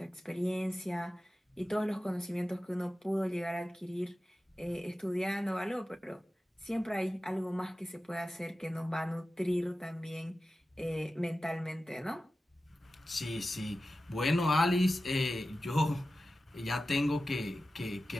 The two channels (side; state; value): both; normal; correlation 0.94